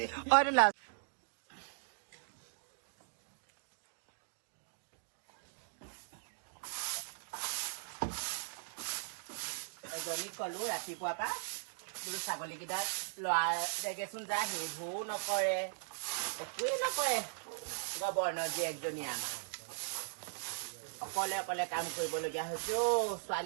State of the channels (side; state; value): left; silent; digital silence